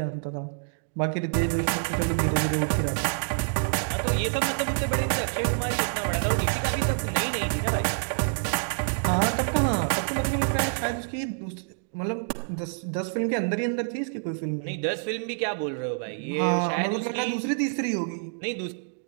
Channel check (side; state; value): left; silent; digital silence